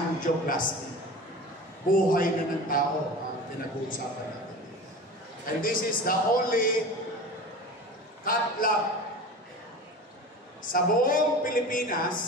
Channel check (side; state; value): both; normal; correlation 0.34